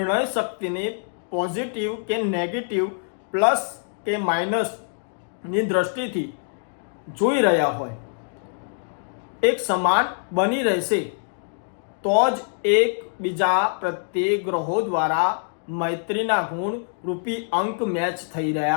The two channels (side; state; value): right; silent; digital silence